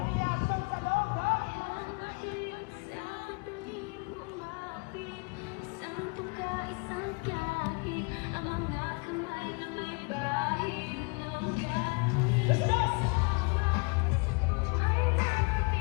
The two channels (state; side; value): quieter; right; 32.1 dB